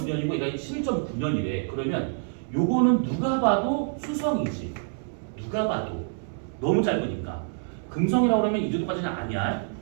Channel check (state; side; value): silent; left; 60 dB below the other